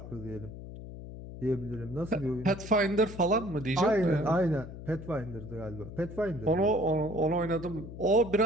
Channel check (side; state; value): left; noise; hum, 12 dB below the sound